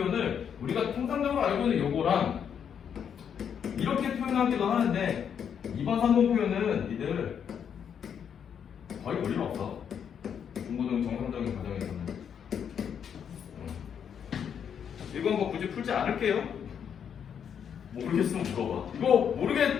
우리가 통상적으로 알고 있는 요거랑 이렇게 표현하기도 하는데, 2번, 3번 표현은 니들 거의 볼 일 없어. 중고등 정상적인 과정에서는. 이건 뭐 굳이 풀지 않을게요. 모르겠으면 물어봐. 이거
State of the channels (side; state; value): right; quieter; 7.9 dB